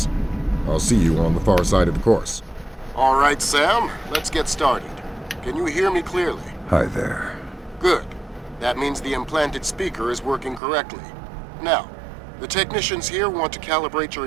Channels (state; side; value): drops out; left; at 10.6 s